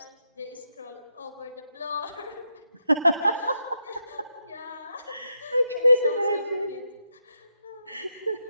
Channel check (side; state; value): both; inverted; correlation -0.82